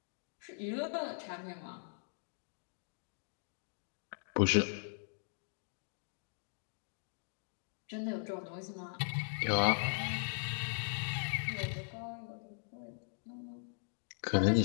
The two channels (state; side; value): silent; right; digital silence